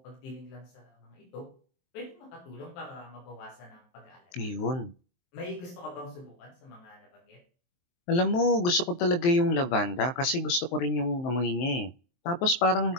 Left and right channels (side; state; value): right; late; 23 ms